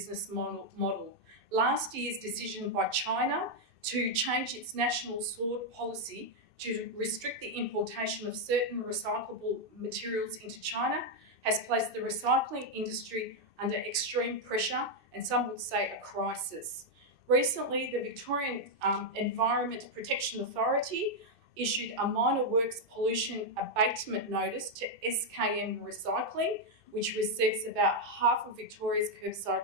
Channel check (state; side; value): late; left; 2.6 ms